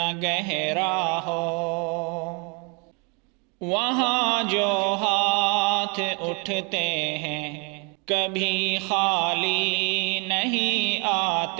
گہرا ہو، وہاں جو ہاتھ اٹھتے ہیں کبھی خالی نہیں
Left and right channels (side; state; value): left; quieter; 33.5 dB